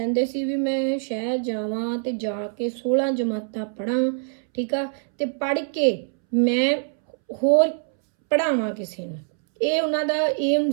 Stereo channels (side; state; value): left; silent; 63 dB below the other